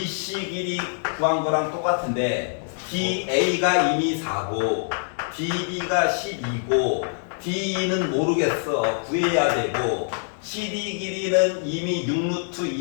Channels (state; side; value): silent; right; digital silence